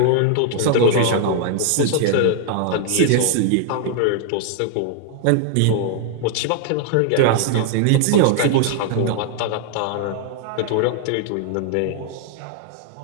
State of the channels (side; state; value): both; different; correlation 0.00